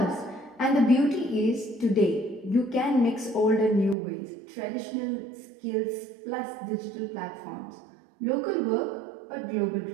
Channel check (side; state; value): left; drops out; at 4.0 s